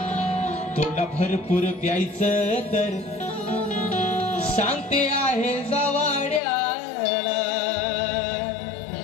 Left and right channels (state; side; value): drops out; right; at 6.4 s